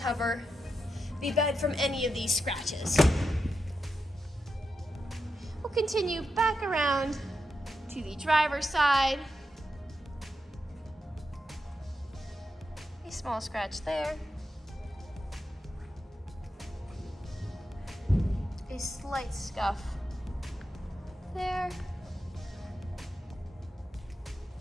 the bed from any of these scratches. We'll continue back around to the driver's side. A small scratch there. A slight scuff there.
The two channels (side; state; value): both; normal; correlation 0.87